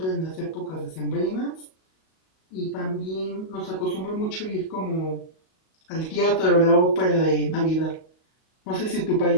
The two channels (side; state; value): right; late; 38 ms